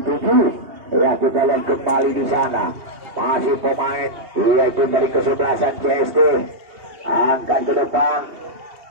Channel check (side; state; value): left; late; 2.8 ms